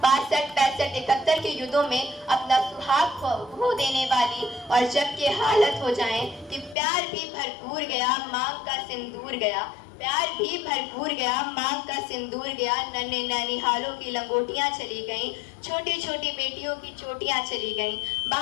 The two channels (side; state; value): right; drops out; at 6.8 s